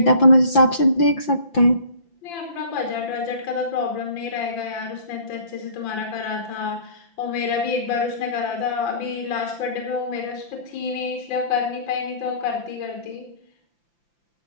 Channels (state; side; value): late; right; 5.9 ms